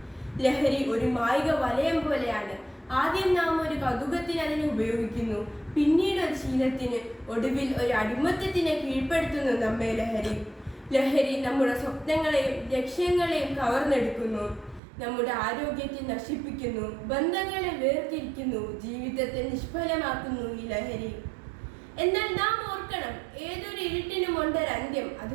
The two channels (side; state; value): left; drops out; at 14.8 s